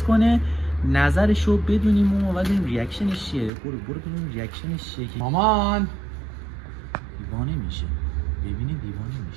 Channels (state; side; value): drops out; left; at 3.5 s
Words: کنه، نظرشو بدونیم و ببینیم ریاکشنش چیه. برو ببینیم ریاکشنش چیه. مامان دیوانه میشه، ببینه دیوانه